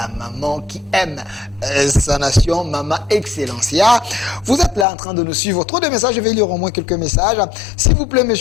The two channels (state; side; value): drops out; right; at 4.9 s